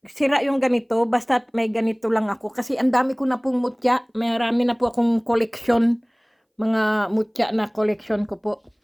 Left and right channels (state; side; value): identical; both; correlation 1.00